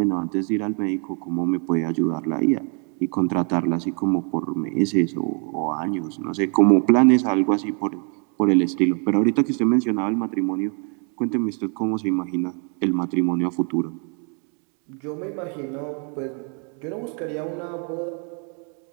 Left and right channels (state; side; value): quieter; left; 38.8 dB